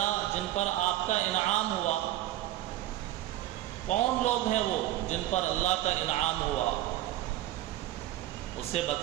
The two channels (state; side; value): quieter; left; 14.5 dB